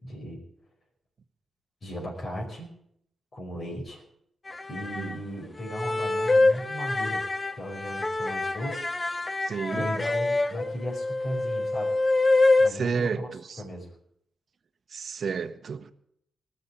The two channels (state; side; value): normal; both; correlation 0.95